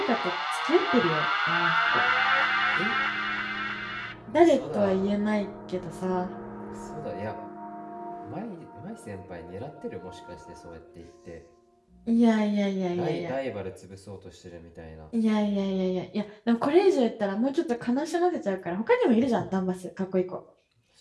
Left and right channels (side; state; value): both; identical; correlation 1.00